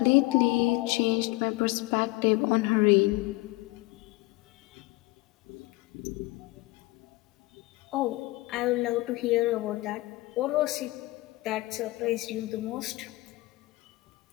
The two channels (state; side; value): quieter; right; 21.3 dB